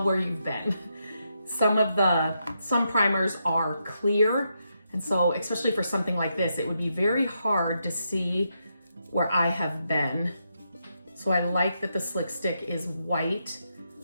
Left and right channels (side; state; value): both; inverted; correlation -0.82